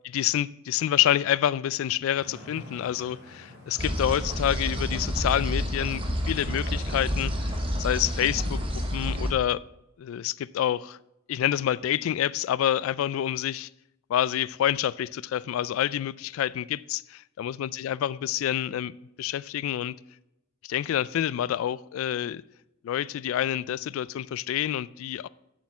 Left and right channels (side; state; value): right; quieter; 8.0 dB